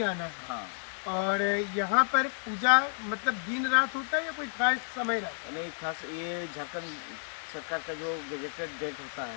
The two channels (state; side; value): silent; right; digital silence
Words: आना है। हाँ। और यहाँ पर पूजा मतलब दिन रात होता है या कोई खास समय रहता है? नहीं, खास ये झारखंड सरकार का जो गजेटेड डेट होता